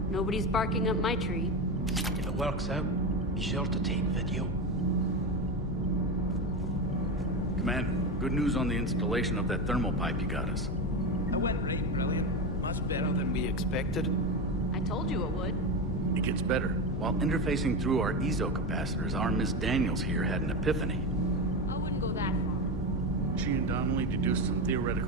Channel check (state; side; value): normal; both; correlation 0.17